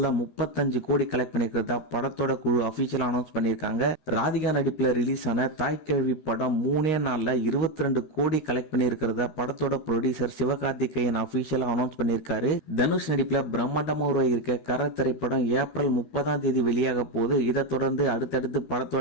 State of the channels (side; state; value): right; late; 13 ms